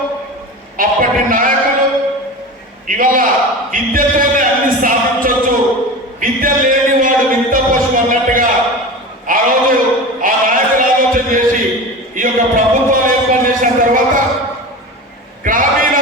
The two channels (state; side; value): normal; both; correlation 0.30